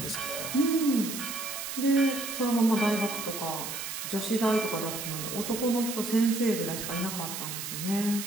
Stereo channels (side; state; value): right; noise; hiss, 6 dB below the sound